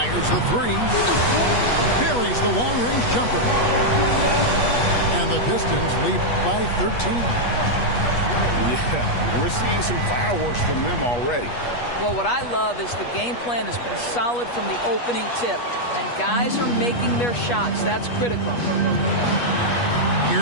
the three. Buries the long-range jumper. And the Pistons lead by 13. Yeah, we're seeing some fireworks from them already. Well, what I love is the game plan has been solid from the opening tip. And guys are making their shots. That's critical.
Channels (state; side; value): late; right; 8.3 ms